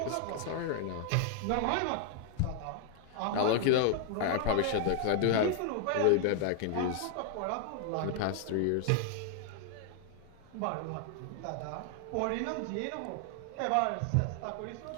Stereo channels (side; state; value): both; different; correlation 0.00